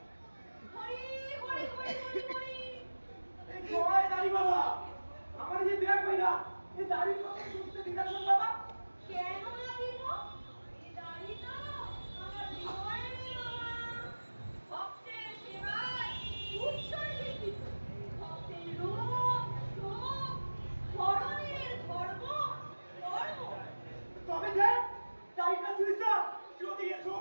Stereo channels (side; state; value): both; inverted; correlation -1.00